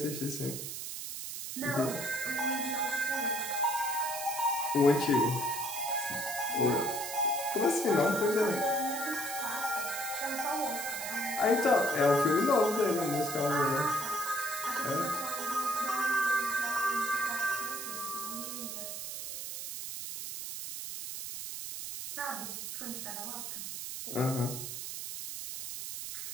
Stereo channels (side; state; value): right; noise; hiss, 6 dB below the sound